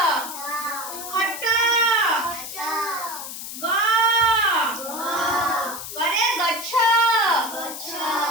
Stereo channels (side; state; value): left; noise; hiss, 9 dB below the sound